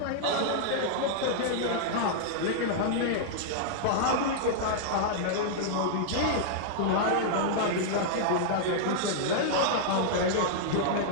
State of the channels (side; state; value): both; different; correlation -0.02